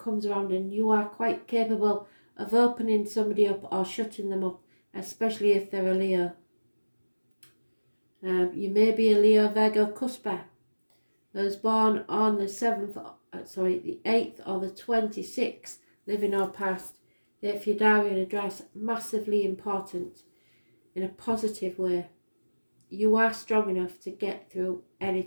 around, and you are quite capable of opening somebody up or shutting them up, especially if they're a Leo. You may be a Leo Virgo cusper. Those born on the 8th or the 26th, living or past. If your diary and address, massively important in a positive way. You are strong enough to get through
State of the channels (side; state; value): both; inverted; correlation -1.00